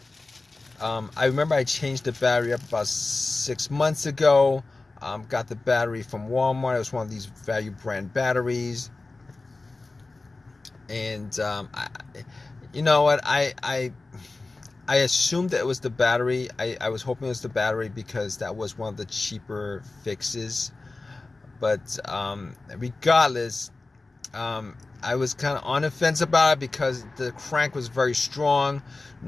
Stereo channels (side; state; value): right; quieter; 3.4 dB